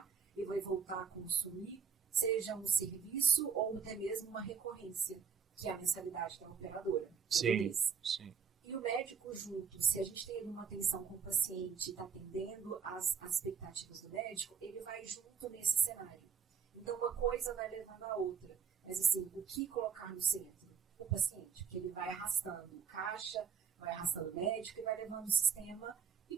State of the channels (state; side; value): quieter; left; 6.8 dB